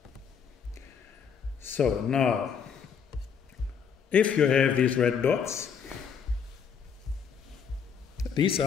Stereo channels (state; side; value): quieter; right; 6.9 dB